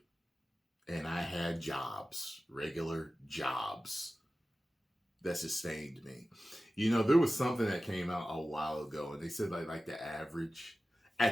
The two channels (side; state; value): both; normal; correlation 0.95